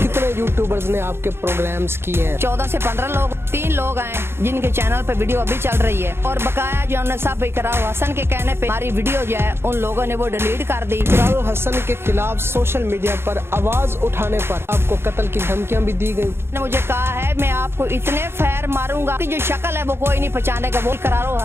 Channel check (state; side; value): late; left; 0.12 ms